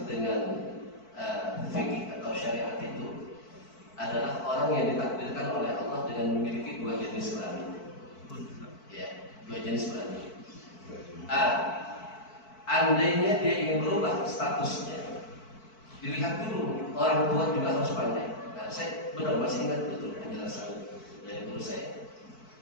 dengan fikih atau syariat itu adalah orang yang ditakdirkan oleh Allah dengan memiliki dua jenis kelamin. Ya, dua jenis kelamin. Andainya dia ingin berubah statusnya, dilihat dulu, orang tua juga harus pandai. Nah, saya benar masih ingat betul penjelasan dari guru saya.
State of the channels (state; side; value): late; right; 4.5 ms